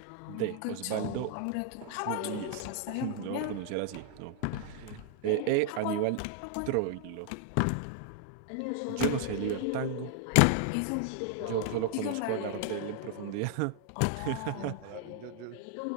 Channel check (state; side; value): different; both; correlation 0.00